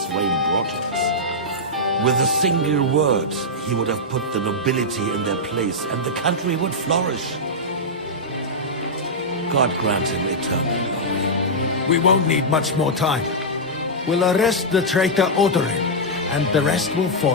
reign brought to us. With a single word, he would have put the nobility in their place, and the country would flourish. God grant him eternal glory. We won't need much more time. We'll arrest the traitor Odorin, and the rest will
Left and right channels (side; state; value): both; normal; correlation -0.07